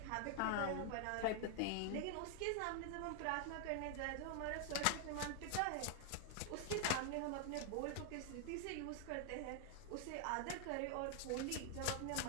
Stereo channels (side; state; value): both; different; correlation 0.00